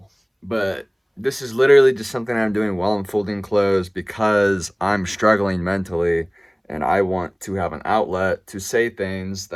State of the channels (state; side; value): identical; both; correlation 1.00